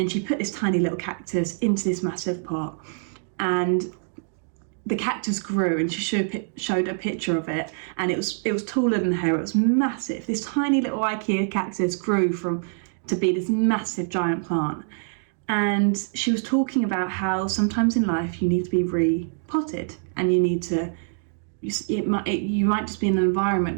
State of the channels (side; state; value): left; silent; digital silence